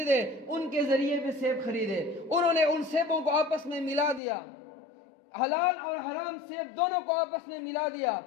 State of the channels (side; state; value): right; drops out; at 4.2 s